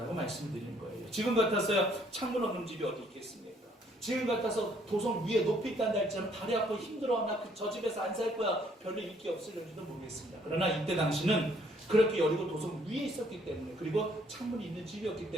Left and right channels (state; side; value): normal; both; correlation 0.65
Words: 말씀드리는 거예요. 지금 같아서야 창문 없는 집이 어디 있겠습니까? 지금 같아서 도성 위에 높이 있다는 할지라도 다리 아프고 힘들어, 나 저 집에서 안 살 거야, 별로 인기 없을지도 모르겠습니다. 그러나 이때 당시는 그렇게 여리고 도성 위에 있었기 때문에, 그리고 창문이 있는 집이었기